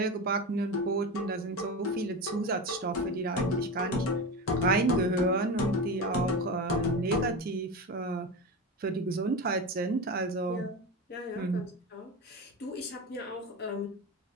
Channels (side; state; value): both; normal; correlation 0.23